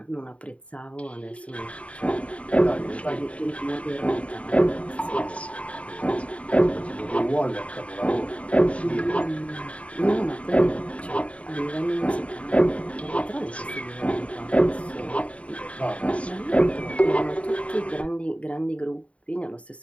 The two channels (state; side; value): late; right; 0.064 ms